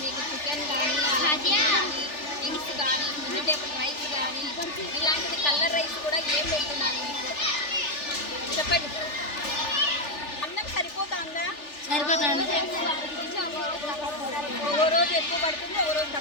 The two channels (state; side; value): late; right; 3.4 ms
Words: ఇలాంటిది కలర్ రైస్ కూడా ఏం పెడుతున్నారు మీకు చెప్పండి. అన్నం సరిపోతుందా? సరిపోతుంది. ఓ రోజు ఎక్కువ పడుతుంది, ఓ రోజు